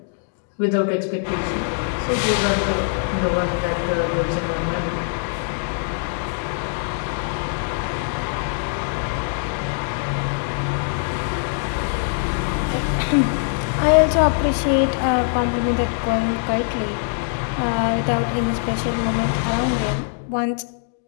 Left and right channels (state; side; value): silent; right; digital silence